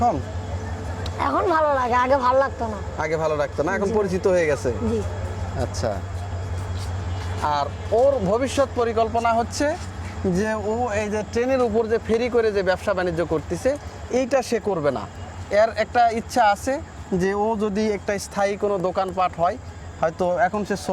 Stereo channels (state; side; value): identical; both; correlation 1.00